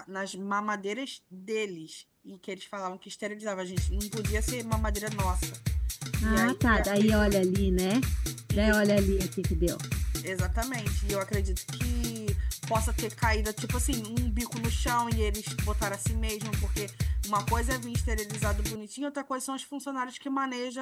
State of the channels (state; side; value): identical; both; correlation 1.00